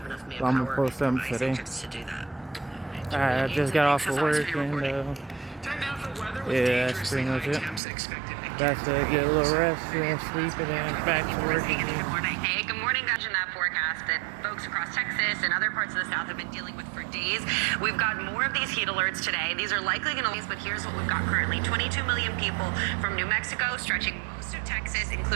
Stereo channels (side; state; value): left; drops out; at 7.8 s